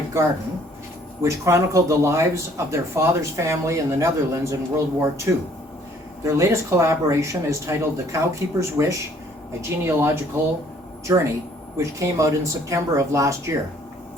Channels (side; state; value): both; normal; correlation 0.60